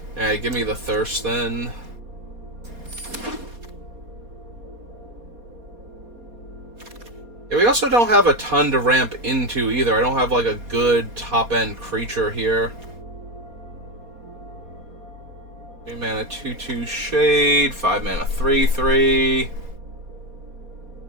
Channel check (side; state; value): left; late; 4.2 ms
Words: Alright, give me the Thirst then. Yeah, we also don't have a ton to ramp into either. I don't have like a good top-end creature here. 3 mana 2/2 Shade, 5 mana 3/3.